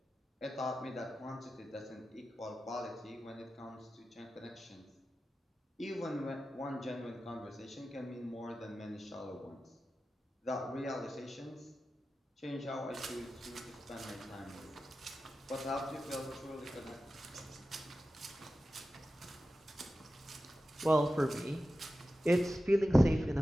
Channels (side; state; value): both; normal; correlation 0.93